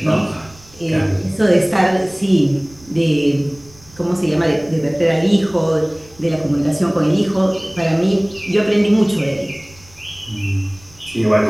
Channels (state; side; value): noise; right; rumble, 25 dB below the sound